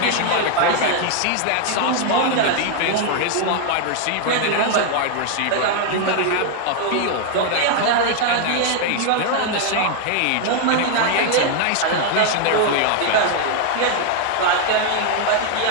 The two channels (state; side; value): different; both; correlation 0.00